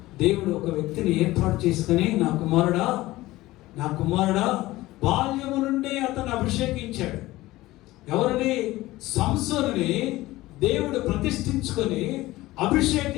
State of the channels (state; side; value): quieter; right; 17.9 dB